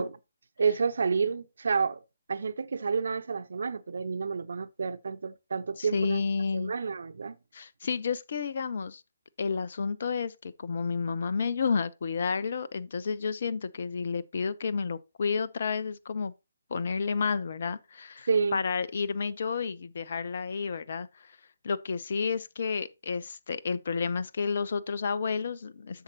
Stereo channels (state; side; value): inverted; both; correlation -0.83